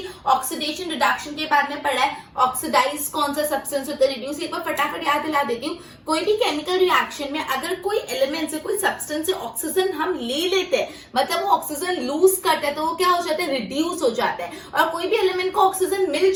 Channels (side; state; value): both; identical; correlation 1.00